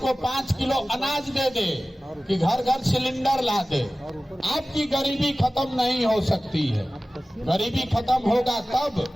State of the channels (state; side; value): normal; both; correlation 0.97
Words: 5 किलो अनाज दे दे कि घर घर सिलेंडर ला दे, आपकी गरीबी खत्म नहीं हो सकती है। गरीबी खत्म होगा तब